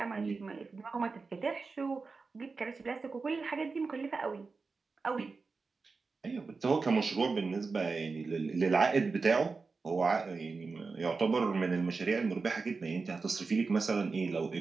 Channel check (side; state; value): left; quieter; 4.3 dB